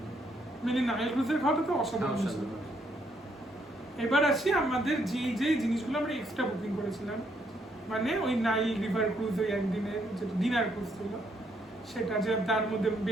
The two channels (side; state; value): both; normal; correlation 0.73